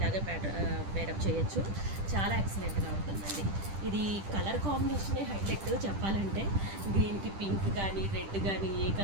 పేరప్ చేయొచ్చు. చాలా ఎక్సలెంట్గా ఉంటుందండి. ఇది కలర్ కాంబినేషనే హైలైట్ చెప్పాలంటే. గ్రీన్కి పింక్ కానీ రెడ్ కానీ ఏ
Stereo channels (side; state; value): left; late; 10 ms